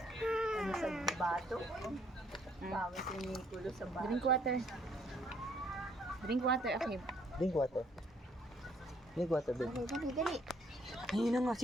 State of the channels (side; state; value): both; normal; correlation 0.65